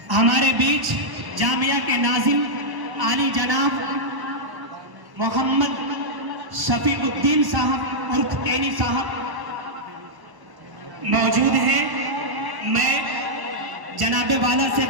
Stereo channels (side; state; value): left; late; 1.1 ms